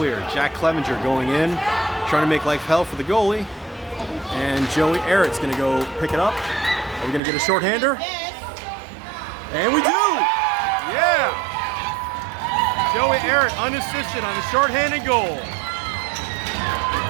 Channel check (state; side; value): drops out; left; at 7.2 s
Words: Jack Clevenger going in, trying to make life hell for the goalie. And Joey Eric's going to go pick it up. Are we going to get a shorthander? And we do! Yeah! Joey Eric unassisted on the shorthanded goal.